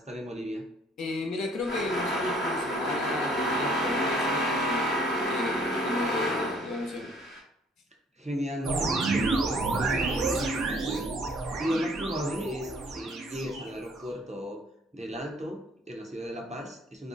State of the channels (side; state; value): both; normal; correlation 0.58